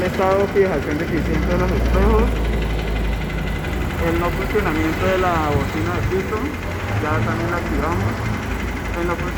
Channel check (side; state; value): both; identical; correlation 1.00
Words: estado de fijación deficiente de los espejos, el no funcionamiento de la bocina de piso, ya también la activamos, el no